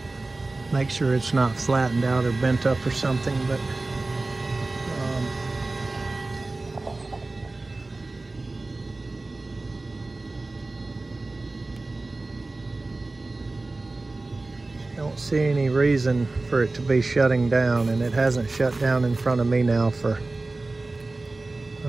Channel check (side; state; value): left; quieter; 3.2 dB